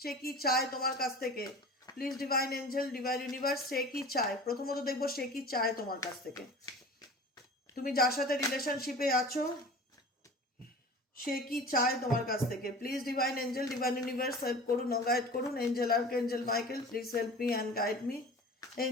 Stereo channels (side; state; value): both; normal; correlation 0.39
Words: কি চায় তোমার কাছ থেকে। Please divine angel, divine universe, সে কি চায়? প্রথমত দেখবো সে কি চায় তোমার কাছ থেকে। তুমি যার সাথে রিলেশনশিপে আছো সে কি চায় তোমার কাছ থেকে। Please divine angel, divine universe help করুন ও গাইড করুন। Angel archangel Michael please help me and guide me.